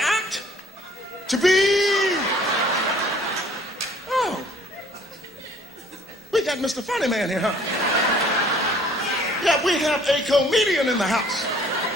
To be... Oh. We got Mr. Funny Man here, huh? Yeah, we have a comedian in the house.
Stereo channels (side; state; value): both; normal; correlation 0.56